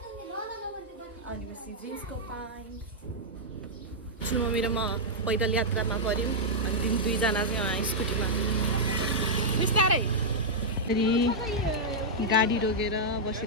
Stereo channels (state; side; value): normal; both; correlation -0.07